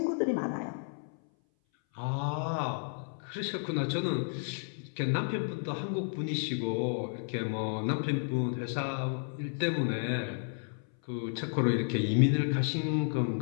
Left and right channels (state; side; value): silent; right; 56 dB below the other